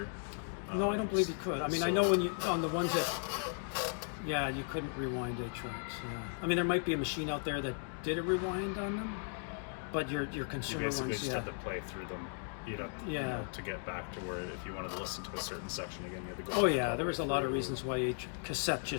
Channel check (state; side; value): silent; right; 54 dB below the other